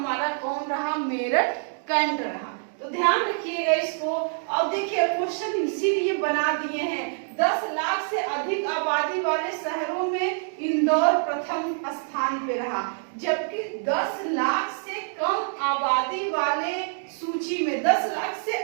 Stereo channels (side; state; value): left; silent; digital silence